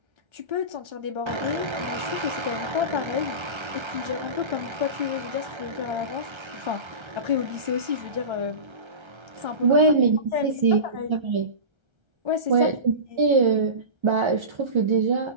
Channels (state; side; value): late; left; 1.3 ms